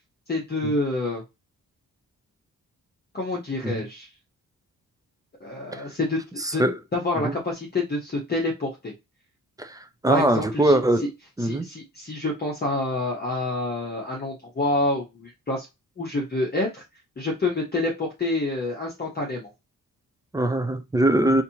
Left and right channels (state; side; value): normal; both; correlation 0.46